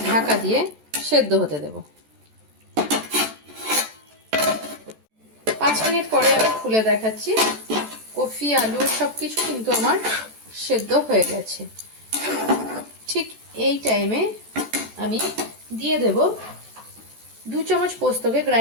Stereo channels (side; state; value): left; late; 14 ms